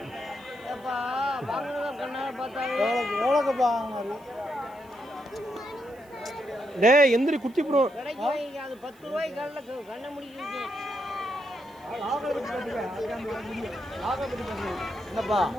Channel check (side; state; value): right; noise; hiss, 29 dB below the sound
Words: டேய் எந்திரி குட்டி ப்ரோ. 10 ரூபாய்க்கு கண்ண முடிக்க என்னப்பா